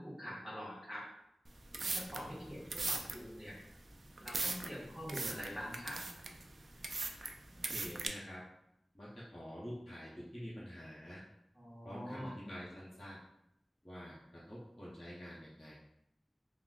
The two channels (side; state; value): both; normal; correlation 0.94